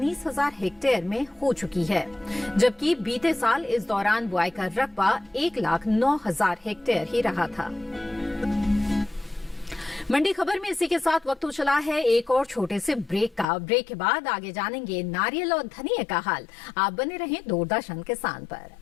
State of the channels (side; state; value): right; drops out; at 13.5 s